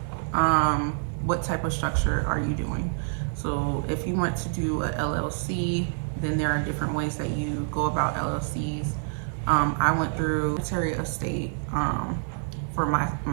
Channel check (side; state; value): left; silent; 60 dB below the other